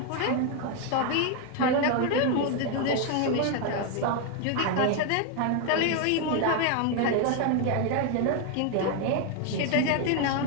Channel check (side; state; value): both; different; correlation 0.01